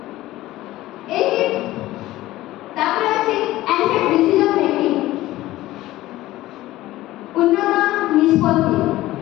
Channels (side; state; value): right; quieter; 16.4 dB